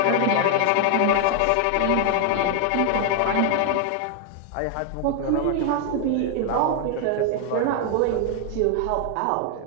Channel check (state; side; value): different; both; correlation 0.00